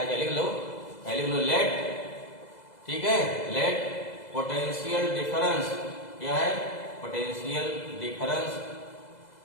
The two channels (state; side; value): late; right; 2.0 ms